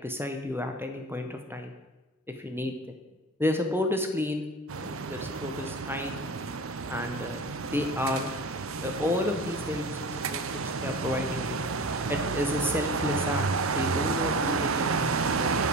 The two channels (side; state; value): both; normal; correlation 0.34